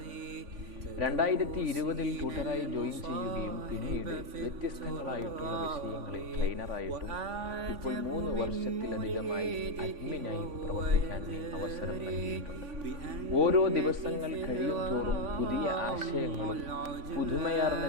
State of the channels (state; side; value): late; left; 3.5 ms